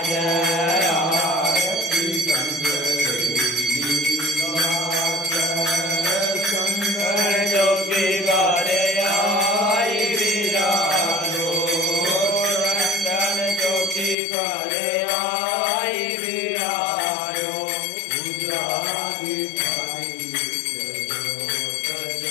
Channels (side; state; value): right; drops out; at 14.2 s